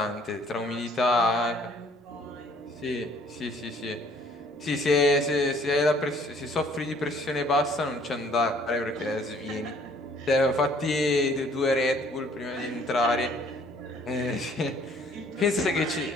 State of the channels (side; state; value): both; normal; correlation 0.59